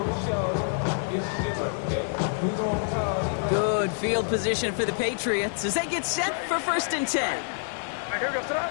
Good field position for the Patriots as they get set for 1st and 10.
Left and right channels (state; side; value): silent; right; digital silence